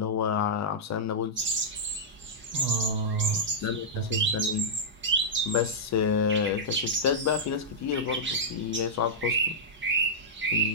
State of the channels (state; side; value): normal; both; correlation -0.10